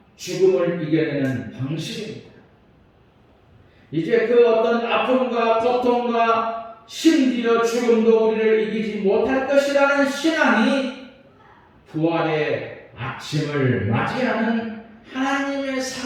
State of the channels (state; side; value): identical; both; correlation 1.00